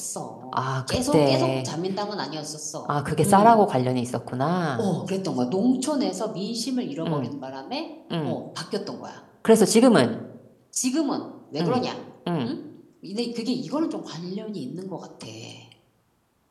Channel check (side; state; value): both; identical; correlation 1.00